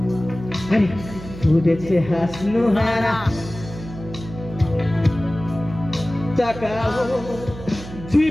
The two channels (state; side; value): noise; right; hum, 13 dB below the sound